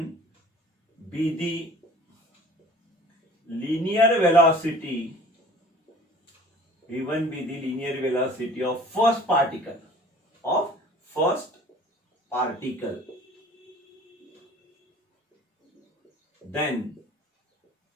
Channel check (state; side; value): normal; both; correlation 0.47